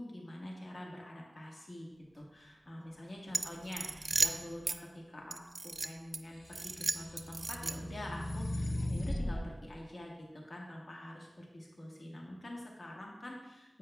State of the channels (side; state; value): both; normal; correlation 0.97